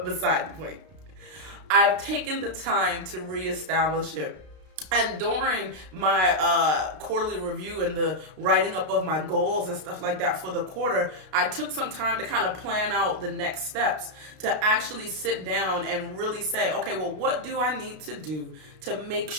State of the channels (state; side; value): late; left; 33 ms